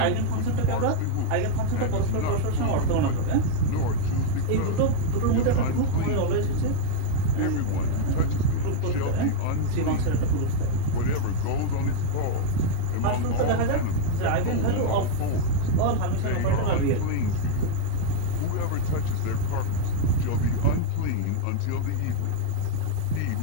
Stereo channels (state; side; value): different; both; correlation -0.01